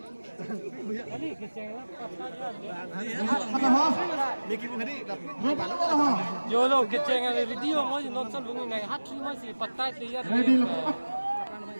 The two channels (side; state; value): both; inverted; correlation -1.00